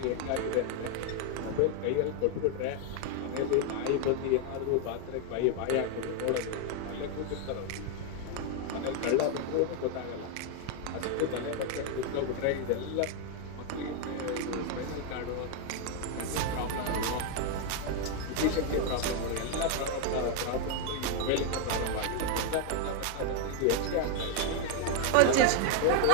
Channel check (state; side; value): different; both; correlation 0.01